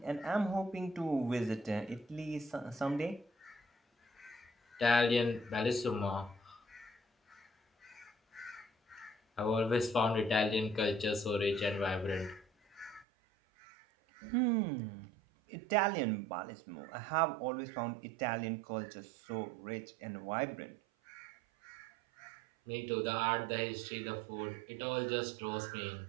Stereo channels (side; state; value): left; drops out; at 13.1 s